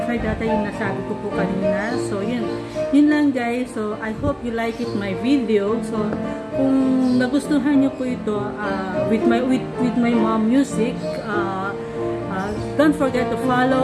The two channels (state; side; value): identical; both; correlation 1.00